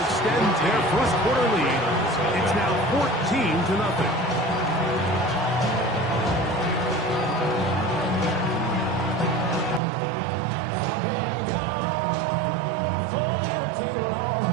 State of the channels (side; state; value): left; drops out; at 9.8 s